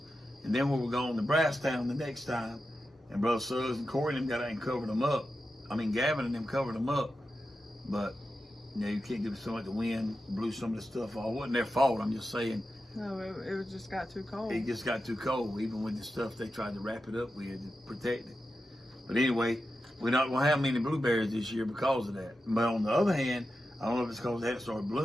and then we were going to Brasstown the next time, and Brother Suggs and Corey and them got out and covered them up. I mean, Gavin and them covered them up, but you can't give so much the wind blew some of the stuff off. It wasn't their fault. I'm just saying. No, it just got too cold. It just got too cold, even with the stuff they tried to wrap it up with to protect it. But anyway, we're not going to have many blueberries this year because of that. But on the other hand, I don't know if it's because they hadn't started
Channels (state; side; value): normal; both; correlation 0.90